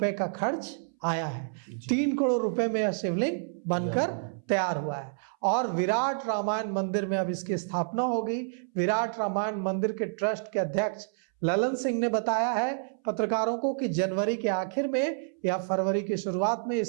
का खर्च आया है। 3 करोड़ रुपए में यह शिवलिंग बनकर तैयार हुआ है और विराट रामायण मंदिर में अब इसकी स्थापना होगी। विराट रामायण मंदिर के ट्रस्ट के अध्यक्ष ललन सिंह ने बताया है पत्रकारों को कि जनवरी के आखिर में या फरवरी की शुरुआत में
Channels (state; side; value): silent; left; 59 dB below the other